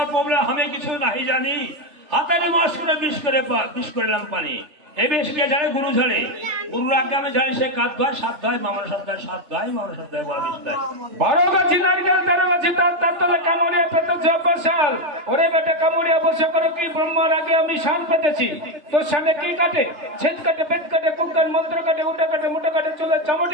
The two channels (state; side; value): late; left; 3.3 ms